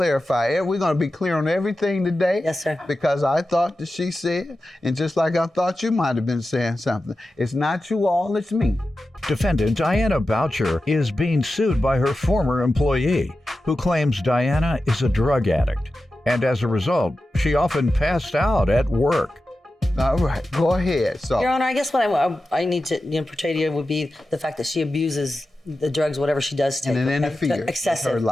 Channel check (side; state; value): both; normal; correlation 0.92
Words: it. We're going to be clear on everything today. Yes, sir. Because I thought that she said, and just like I thought you might have been saying something, it's not you all, it's me. Defendant Diana Boucher is being sued by her former employee, who claims Diana is a drug addict, and as a result, she often passed out at work. All right, go ahead. So, Your Honor, I guess what I need to portray to you would be the fact that she abuses the drugs, whatever she does take. And it okay? interferes with Excessive. her